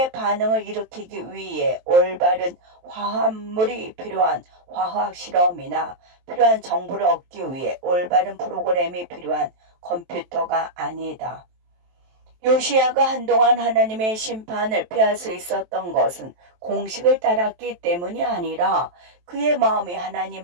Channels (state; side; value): late; left; 23 ms